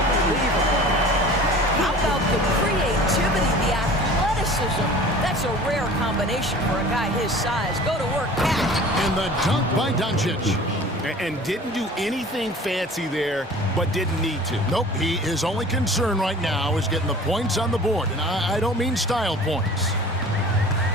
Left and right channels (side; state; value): both; normal; correlation 0.43